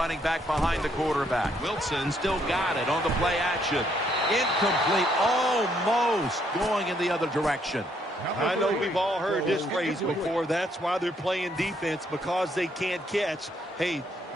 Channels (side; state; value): both; normal; correlation 0.71